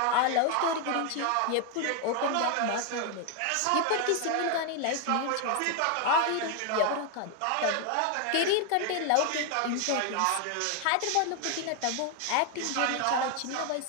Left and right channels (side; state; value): both; different; correlation 0.01